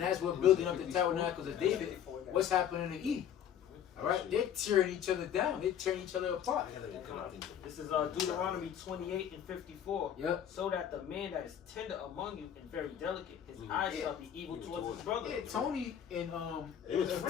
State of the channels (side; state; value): right; quieter; 9.4 dB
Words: as we're building up the tabernacles of David, what's happening to Edom? All right? They're tearing each other down. They're tearing each other apart. This is Deuteronomy 28:54. Yep. So that the man that is tender among you and very delicate, his eyes shall be evil towards his brother. Yeah, Tony and They was Tony